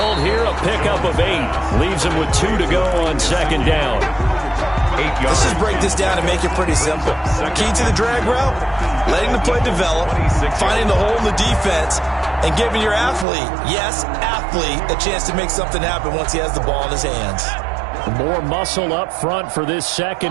here, a pickup of 8. Leaves them with 2 to go on 2nd down. Let's just break this down and make it pretty simple. Key to the drag route, letting the play develop, finding the hole in the defense, and giving your athlete, yes, athlete, a chance to make something happen once he has the ball in his hands. More muscle up front for this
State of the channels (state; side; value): drops out; left; at 13.2 s